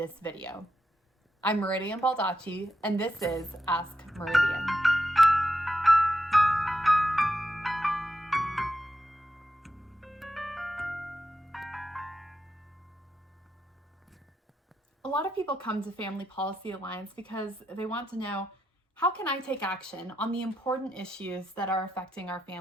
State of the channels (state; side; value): normal; both; correlation 0.85